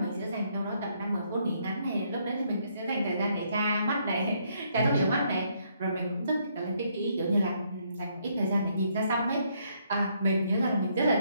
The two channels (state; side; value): inverted; both; correlation -0.71